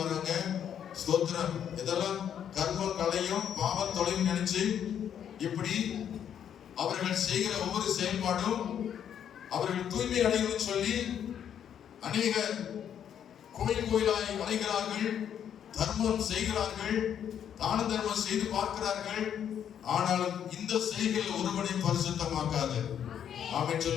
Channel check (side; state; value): right; quieter; 9.1 dB